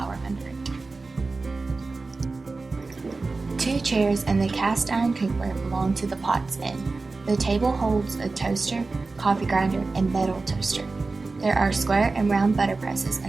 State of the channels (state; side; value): quieter; left; 3.7 dB